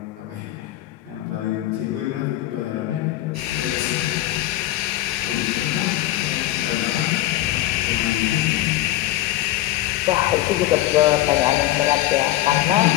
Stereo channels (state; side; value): quieter; right; 15.2 dB